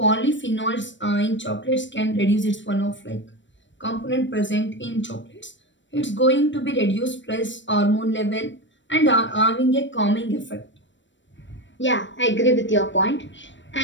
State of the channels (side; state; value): right; late; 0.54 ms